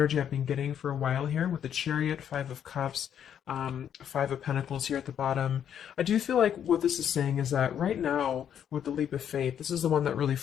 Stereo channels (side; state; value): right; quieter; 9.1 dB